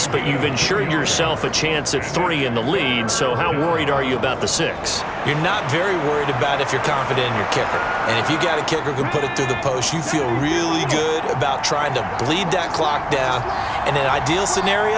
but you've ensured yourself a chance at 3 in the lead, so how worried are you about the 6? You're not very worried about if you're confident in your kicker. And if you got a kicker who can put it through the post, you feel really good about trying to bleed that clock down. In an ideal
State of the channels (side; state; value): both; identical; correlation 1.00